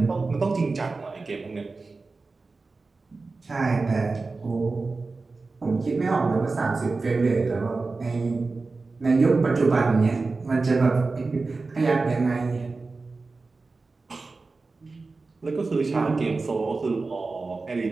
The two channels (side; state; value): left; quieter; 3.8 dB